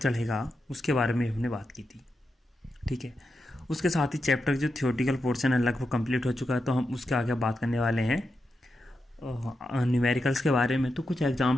उसके बारे में हमने बात की थी। ठीक है, उसके साथ ही चैप्टर जो थियोरेटिकल पोर्शन है लगभग कंप्लीट हो चुका है, तो हम उसके आगे बात करने वाले हैं न्यूमेरिकल्स के बारे में। तो कुछ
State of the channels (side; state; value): both; normal; correlation 0.87